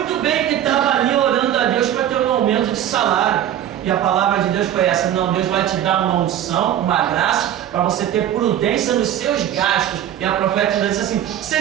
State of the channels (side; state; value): left; quieter; 11.1 dB